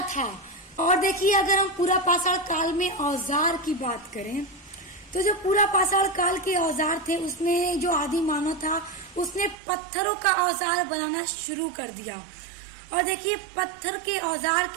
था। और देखिए, अगर हम पूरा पाषाण काल में औजार की बात करें तो जो पूरा पाषाण काल के औजार थे, उसमें जो आदि मानव था उसने पत्थरों का औजार बनाना शुरू कर दिया। और देखिए, पत्थर के औजार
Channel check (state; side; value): drops out; left; at 9.6 s